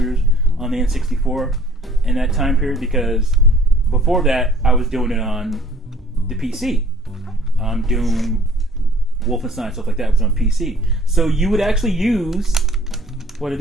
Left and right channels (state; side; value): normal; both; correlation 0.55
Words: on the N64 in that time period because before that I was doing it on the PC. Doom, Wolfenstein, stuff like that was on PC. So you would actually use, what are